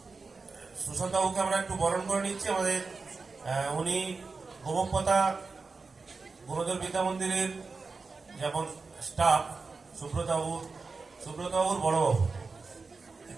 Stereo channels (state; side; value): quieter; left; 4.3 dB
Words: সুশান্ত বাবুকে আমরা একটু বরণ করে নিচ্ছি। আমাদের উনি গোমকপতা গুণধর বিদ্যা মন্দিরের যেমন স্টাফ সুব্রতবাবুর বড়বাবু